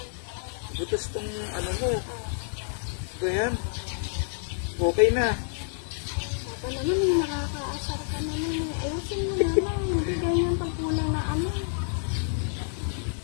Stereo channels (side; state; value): right; silent; 59 dB below the other